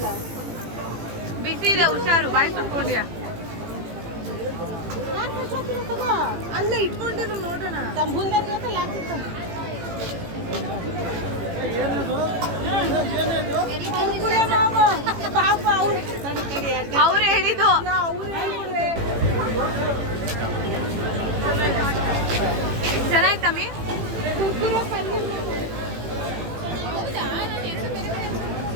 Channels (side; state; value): left; late; 18 ms